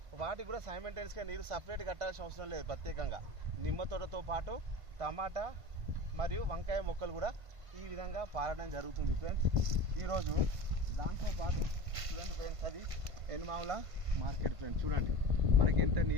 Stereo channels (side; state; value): left; late; 1.5 ms